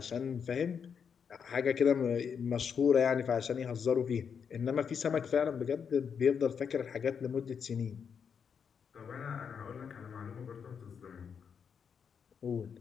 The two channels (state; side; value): quieter; right; 6.9 dB